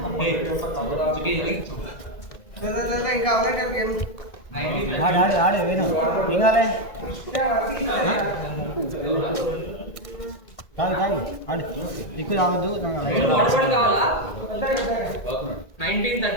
ఆడే వేరు ఇంకాలే కాదు ఆడు ఇక్కడ రావద్దు.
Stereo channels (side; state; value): right; late; 2.0 ms